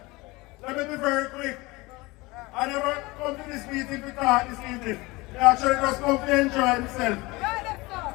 Let me be very quick. I never come to this meeting to talk this evening. I actually just come to enjoy myself.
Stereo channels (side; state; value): right; quieter; 22.7 dB